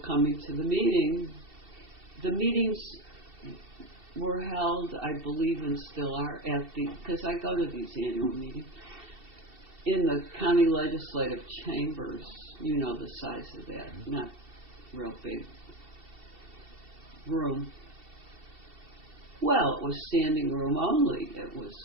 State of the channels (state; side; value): late; left; 2.7 ms